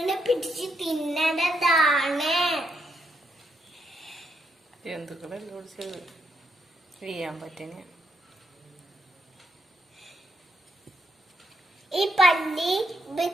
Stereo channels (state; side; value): normal; both; correlation 0.78